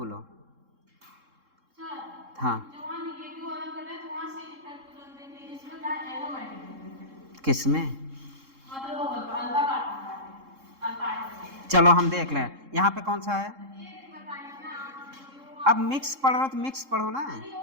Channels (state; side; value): late; left; 3.7 ms